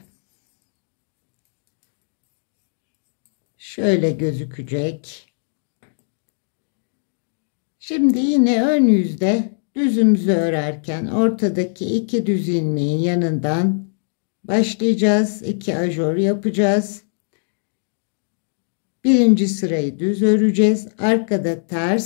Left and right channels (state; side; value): silent; right; digital silence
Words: Şöyle gözükecek. Şimdi yine ön yüzde düzümüzü örerken ortadaki 2 düz ilmeğin yanından başlayacağız. 2 ajor yapacağız. Birinci sırayı düz öreceğiz. Arkada